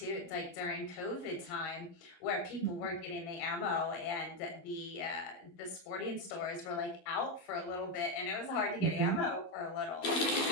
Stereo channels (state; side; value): late; right; 12 ms